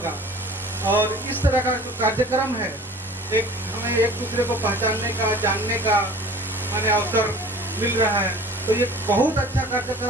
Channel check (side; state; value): both; normal; correlation 0.44